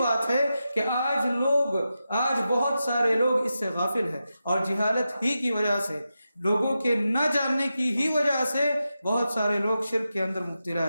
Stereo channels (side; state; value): both; inverted; correlation -0.90